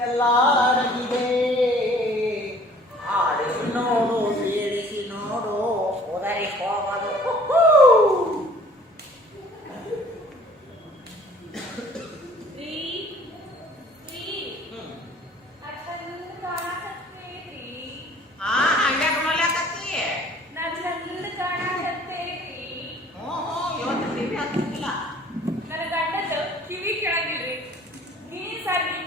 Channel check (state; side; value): normal; both; correlation 0.53